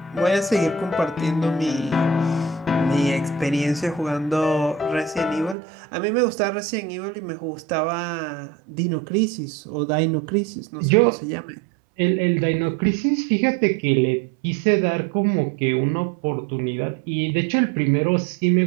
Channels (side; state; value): left; drops out; at 5.6 s